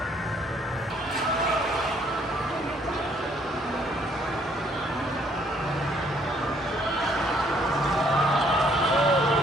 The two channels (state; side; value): normal; both; correlation 0.66